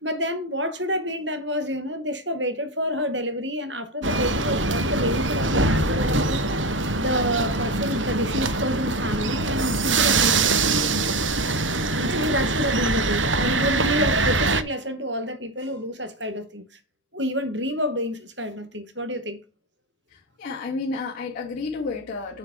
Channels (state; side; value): normal; both; correlation 0.16